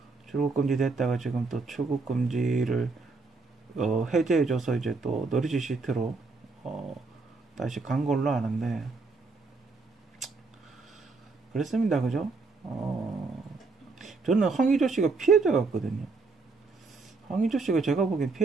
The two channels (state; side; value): quieter; left; 4.0 dB